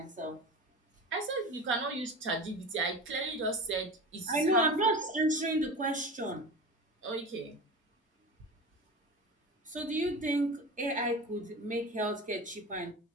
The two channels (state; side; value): normal; both; correlation 0.30